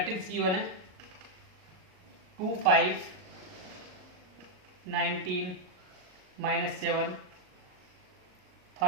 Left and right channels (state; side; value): late; left; 38 ms